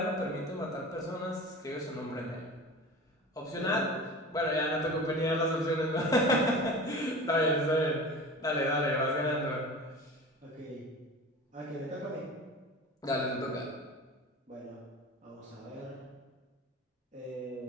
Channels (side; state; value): both; normal; correlation 0.35